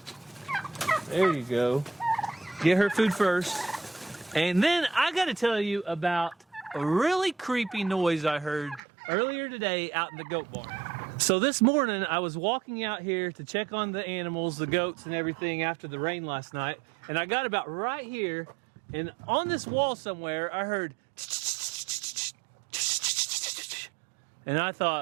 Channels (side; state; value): left; drops out; at 8.8 s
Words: There you go. Get her food first. And then I got to tell you about a really creepy noise I heard earlier today out in the goat barn. So this morning I was walking out here to check on the animals, the goats and everything after the rain last night. And I got about right here, and on this wall somewhere I heard, and I